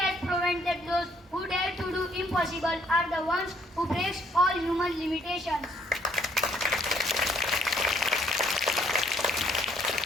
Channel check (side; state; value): both; normal; correlation 0.66